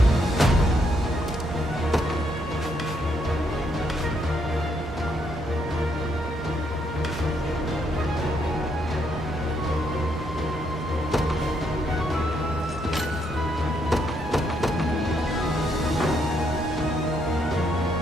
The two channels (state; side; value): normal; both; correlation 0.74